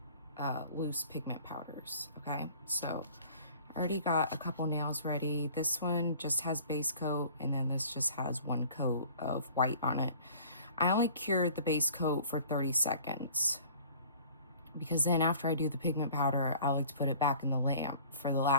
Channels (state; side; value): inverted; both; correlation -0.49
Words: loose pigment powders, okay? So I already got a couple nails ready. This one just has base coat, and then this just has one coat of white on it. I only cured the base coat for 30 seconds because then after I do the pigment powder, I like to put it back in the lamp for the